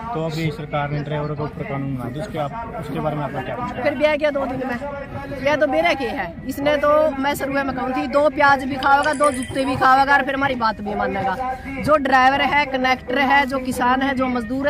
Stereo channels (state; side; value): identical; both; correlation 1.00